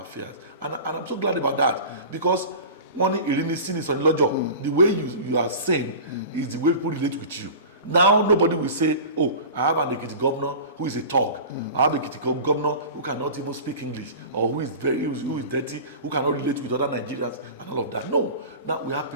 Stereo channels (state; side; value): inverted; both; correlation -0.35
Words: And I'm so glad about that, because one Irini sin is on Lojo. The way you are saying is the way people relate with you. Now nobody will say, oh, I have an Ekiti governor who is a thug. I have an Ekiti governor who cannot even speak English, or who is dirty, who cannot relate with other Nigerians and all of that. No. Now we have